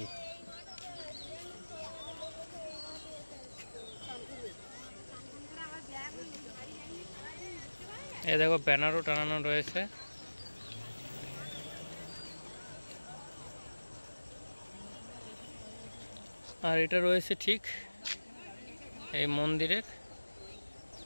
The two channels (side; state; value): both; inverted; correlation -1.00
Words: এই দেখো, ব্যানারও টানানো রয়েছে। আর এটা রয়েছে ঠিক এই মন্দিরের